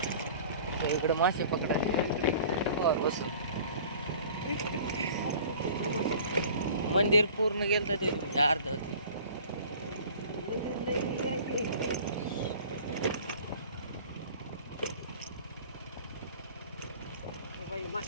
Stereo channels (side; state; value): both; inverted; correlation -0.46